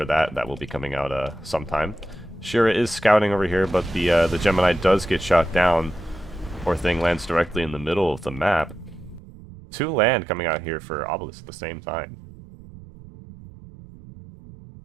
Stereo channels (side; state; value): left; drops out; at 9.2 s